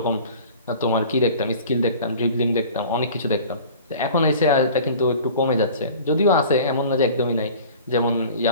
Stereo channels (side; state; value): both; inverted; correlation -0.43